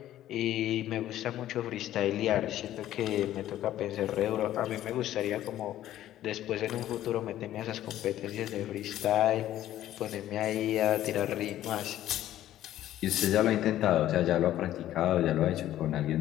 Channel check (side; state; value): right; quieter; 13.0 dB